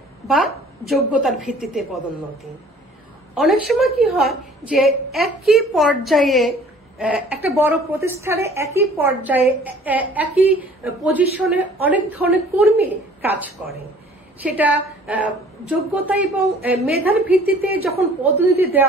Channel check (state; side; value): normal; both; correlation 0.52